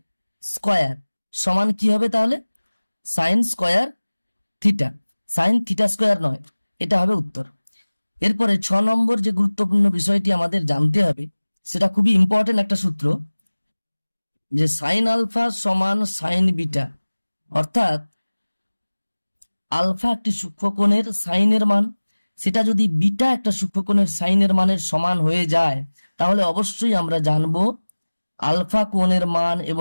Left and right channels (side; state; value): both; inverted; correlation -1.00